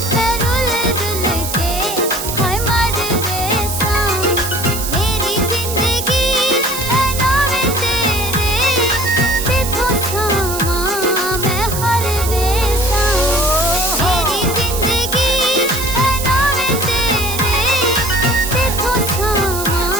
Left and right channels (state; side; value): noise; right; hiss, 6 dB below the sound